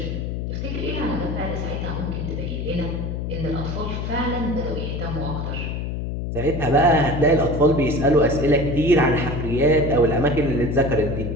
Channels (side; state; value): left; noise; hum, 3 dB below the sound